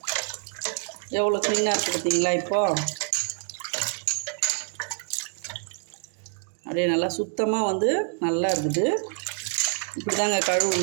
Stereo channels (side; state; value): left; silent; 61 dB below the other